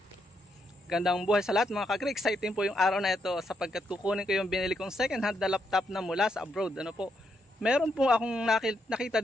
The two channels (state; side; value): normal; both; correlation 0.79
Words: Gandang buhay sa lahat mga ka-agree. Exciting po yung araw na ito sapagkat kukunin ko yung binili kong second hand na laptop na mula sa abroad. Ano po? Meron po akong nakita